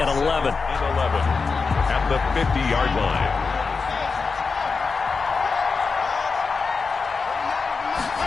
11. At the 50-yard line.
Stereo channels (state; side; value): quieter; right; 4.7 dB